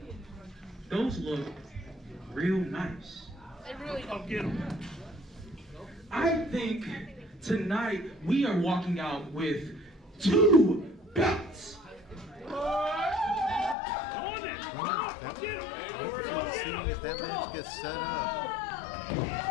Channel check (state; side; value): drops out; right; at 13.8 s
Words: those look real nice. They really don't get them. I think tonight we are walking out with 2 belts. Well, I'm interested in seeing if that match gets set up.